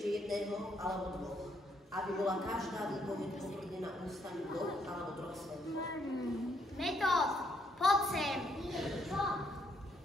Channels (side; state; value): both; normal; correlation 0.73